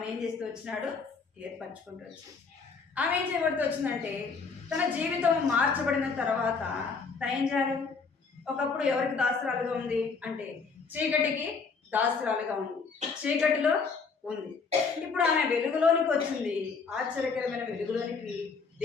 ఏం చేస్తూ వచ్చినాడు? ఏర్పరచుకుంటూ వచ్చింది. ఆమె ఏం చేయబడుతూ వచ్చిందంటే తన జీవితం మార్చబడిన తర్వాత తను ఏం చేయాలి? ఒకప్పుడు ఎవరికి దాసురాలుగా ఉంది అంటే చీకటికి దాసురాలుగా ఉంది, చీకటిలో ఉంది. ఇప్పుడు ఆమె వెలుగులోనికి వచ్చింది. ఆశ్చర్యకరమైన వెలుగులోనికి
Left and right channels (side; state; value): right; quieter; 4.9 dB